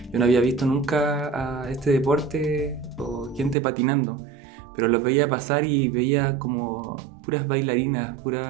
yo no había visto nunca a este deporte o gente patinando, pero los veía pasar y veía como puras bailarinas,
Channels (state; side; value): drops out; left; at 3.6 s